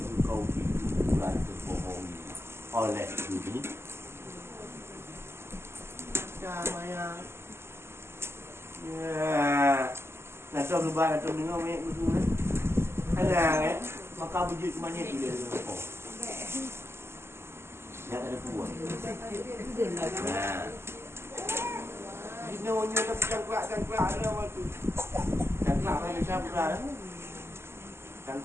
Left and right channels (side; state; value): left; late; 0.12 ms